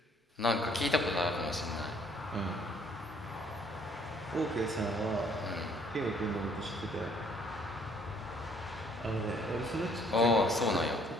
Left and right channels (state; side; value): normal; both; correlation 0.62